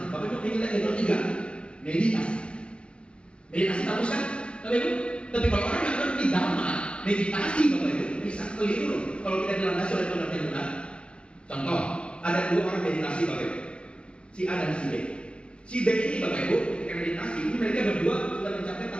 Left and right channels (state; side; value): late; right; 0.057 ms